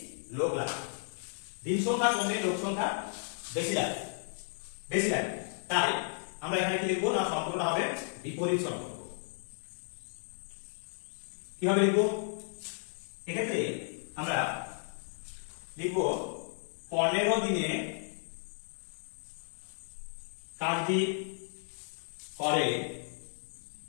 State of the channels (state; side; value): silent; right; digital silence